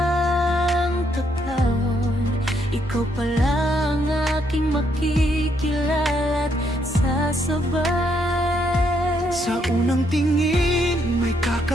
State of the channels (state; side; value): normal; both; correlation 0.74